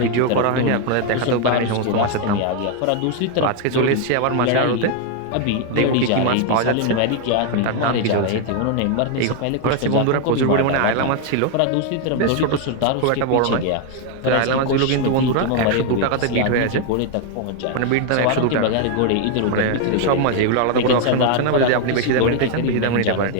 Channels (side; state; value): both; different; correlation 0.01